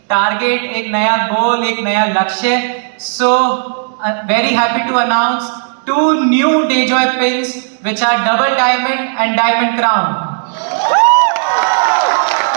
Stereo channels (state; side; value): silent; left; 69 dB below the other